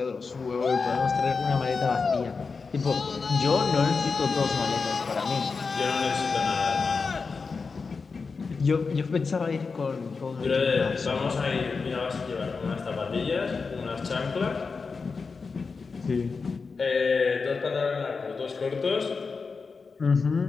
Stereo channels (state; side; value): quieter; right; 4.7 dB